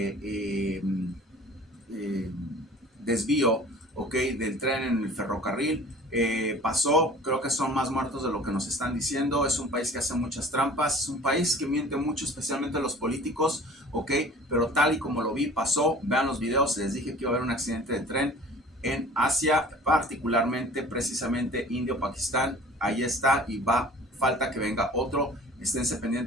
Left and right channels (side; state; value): both; normal; correlation 0.45